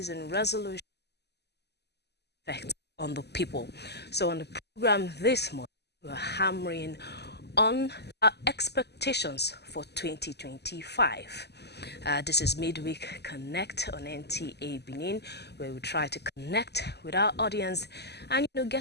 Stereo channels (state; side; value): late; right; 0.49 ms